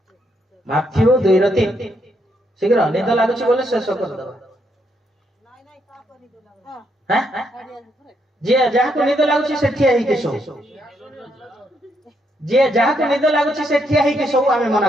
माथ्यू 2 रो 3 शीघ्र निद लागुची बोले शेष कर दबा हैं जे जहा को निद लागुची से ठिया ही के सो जे जहा को निद लागुची से ठिया ही के सो आमे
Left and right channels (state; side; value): normal; both; correlation 0.76